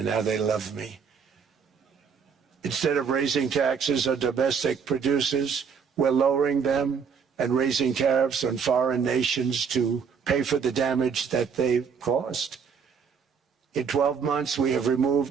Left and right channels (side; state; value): left; quieter; 6.4 dB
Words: now they love me. Instead of raising taxes on domestic producers, we're lowering them and raising tariffs on foreign nations to pay for the damage that they've caused. In 12 months, we have